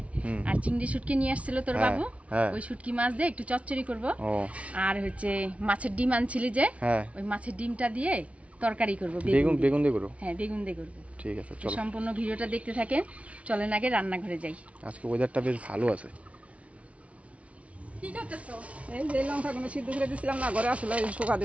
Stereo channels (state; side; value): late; left; 0.064 ms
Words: আর চিংড়ি শুটকি নিয়ে আসছিল তোর বাবু, ওই শুটকি মাছ দিয়ে একটু চচ্চড়ি করব। আর হচ্ছে মাছের ডিম আনছিলি যে, ওই মাছের ডিমটা দিয়ে তরকারি করব। বেগুন দিয়ে করব? হ্যাঁ, বেগুন দিয়ে করব। ঠিক আছে, চলো সম্পূর্ণ ভিডিওটা দেখতে থাকেন। চলেন আগে রান্নাঘরে যাই। আজকে ওয়েদারটা বেশ ভালো আছে। কি করতেছো? এই যে লঙ্কাগুলো সিদ্ধ করে দিছিলাম না, ঘরে আসলে শুকা